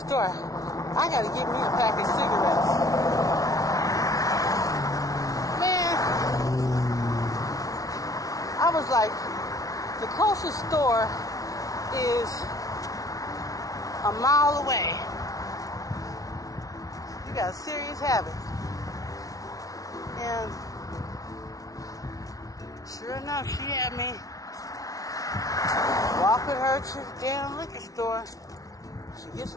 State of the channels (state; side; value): late; right; 0.17 ms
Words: store? I gotta get me a pack of cigarettes. Man, I was like, the closest store is a mile away. You got a serious habit. And sure enough, she had me walk with her to the damn liquor store. She gets